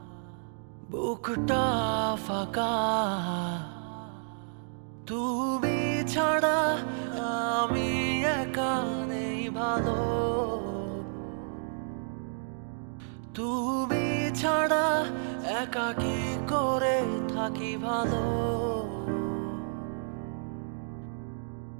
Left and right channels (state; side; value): silent; left; digital silence